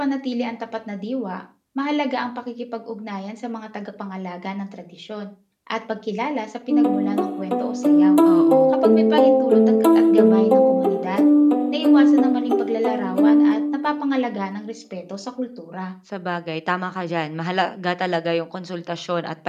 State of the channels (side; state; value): both; identical; correlation 1.00